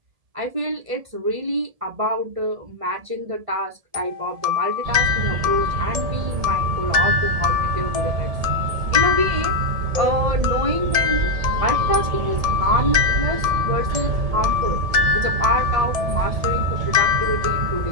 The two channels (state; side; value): late; left; 1.7 ms